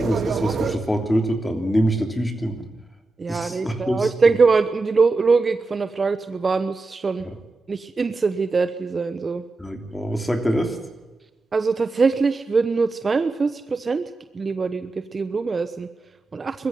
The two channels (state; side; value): quieter; left; 3.3 dB